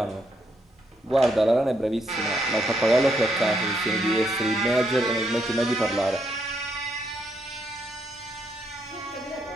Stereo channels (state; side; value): normal; both; correlation 0.76